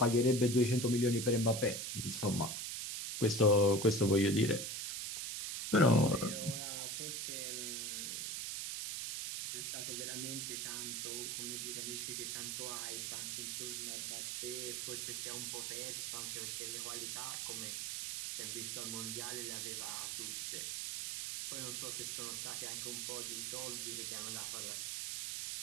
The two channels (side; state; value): right; noise; hiss, 3 dB below the sound